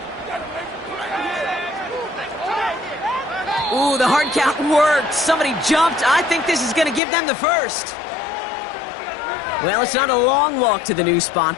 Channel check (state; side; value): drops out; right; at 7.0 s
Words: Ooh, the hard count worked. Somebody jumped. I think this is going to give them the first. Well, it's not a long walk to the new spot,